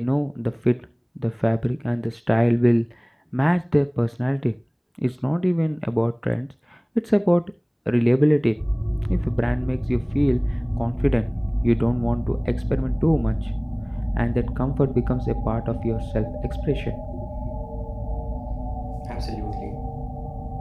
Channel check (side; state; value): both; identical; correlation 1.00